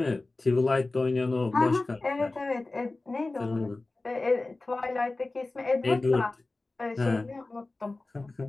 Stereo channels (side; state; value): right; quieter; 3.2 dB